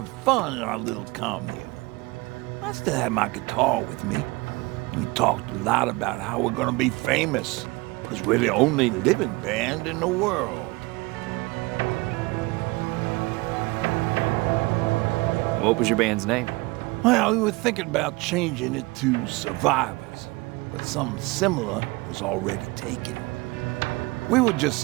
fun in our little commune. I still had my guitar with me. We talked a lot about how we're gonna be famous, because we're the only living band in the world. What was your band's name? Well, we were thinking about changing it to Survivors, but something similar was already taken. We were just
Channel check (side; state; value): left; quieter; 23.7 dB